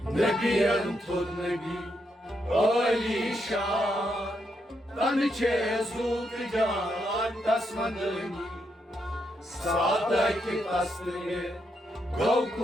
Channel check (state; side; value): normal; both; correlation 0.80